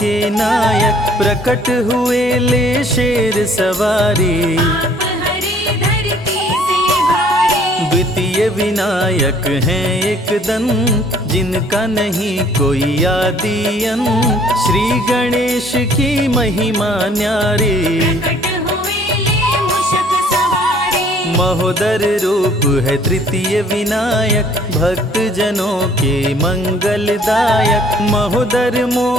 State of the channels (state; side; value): normal; both; correlation 0.58